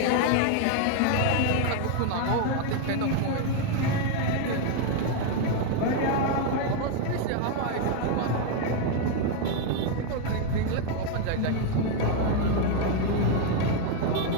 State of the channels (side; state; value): both; different; correlation 0.01